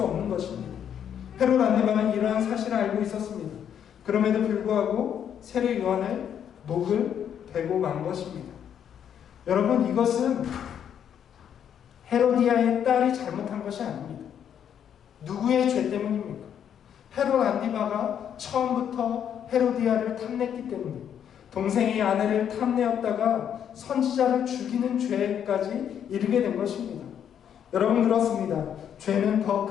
없는 것입니다. 헤롯 안디바는 이러한 사실을 알고 있었습니다. 그럼에도 불구하고 세례 요한을 목을 베고 만 것입니다. 여러분, 이것은 헤로디아의 딸이 잘못한 것이 아닙니다. 누구의 죄 때문입니까? 헤롯 안디바가 처음부터 헤로디아를 탐냈기 때문에, 동생의 아내를 탐내었다가 선지자를 죽이는 죄까지 이르게 된 것입니다. 여러분, 그렇습니다. 죄는 더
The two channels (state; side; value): quieter; right; 8.9 dB